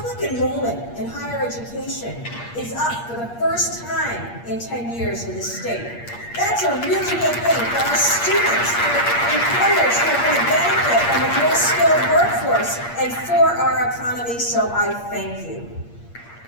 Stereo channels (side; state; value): right; late; 8.5 ms